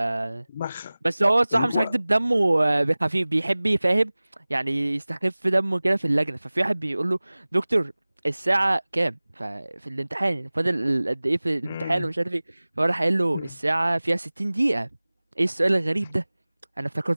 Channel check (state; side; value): inverted; both; correlation -0.99